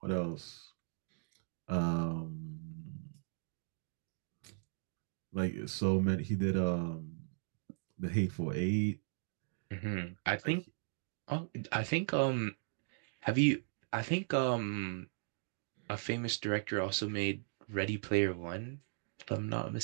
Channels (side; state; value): left; silent; digital silence